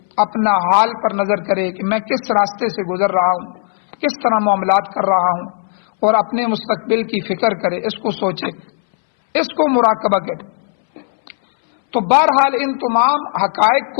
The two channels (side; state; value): right; silent; 63 dB below the other